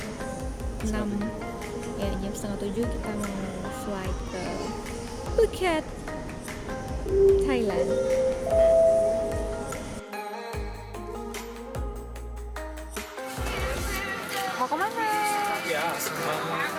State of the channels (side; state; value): both; identical; correlation 1.00